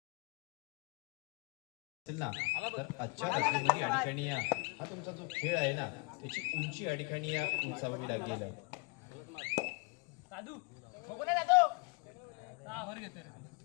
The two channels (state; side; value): quieter; right; 31.0 dB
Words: ना तर आजच्या रात्रीमध्ये या ठिकाणी हा तुमचा जो खेळ आहे ना त्याची उंची या ठिकाणी उंचावावी लागेल.